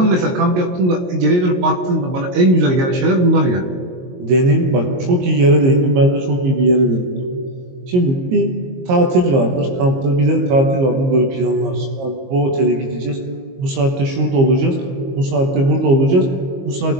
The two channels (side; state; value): left; late; 22 ms